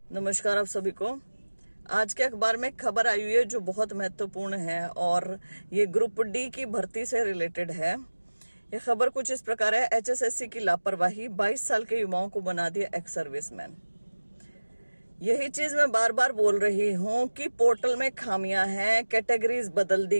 नमस्कार आप सभी को। आज के अखबार में खबर आई हुई है जो बहुत महत्वपूर्ण है और ये ग्रुप डी की भर्ती से रिलेटेड है। ये खबर कुछ इस प्रकार है, एचएसएससी की लापरवाही, 22 साल के युवाओं को बना दिया एक्स सर्विसमैन। यही चीज मैं बार बार बोल रही हूँ कि पोर्टल में खामियां हैं, कैटेगरीज बदल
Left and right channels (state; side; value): inverted; both; correlation -1.00